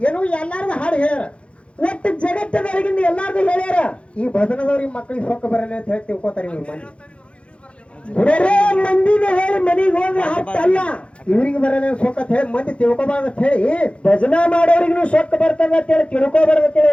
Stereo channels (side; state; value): right; late; 0.060 ms